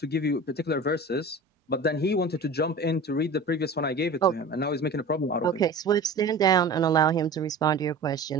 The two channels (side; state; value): left; quieter; 3.0 dB